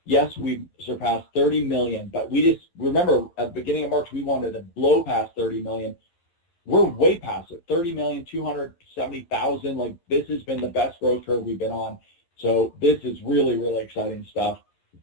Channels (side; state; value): right; late; 11 ms